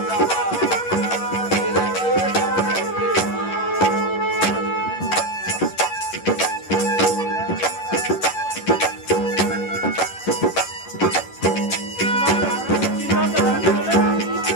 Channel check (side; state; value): right; late; 11 ms